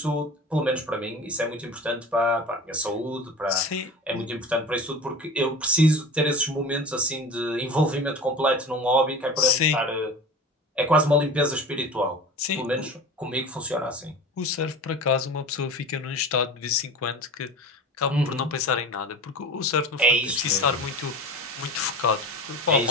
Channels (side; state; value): both; normal; correlation 0.34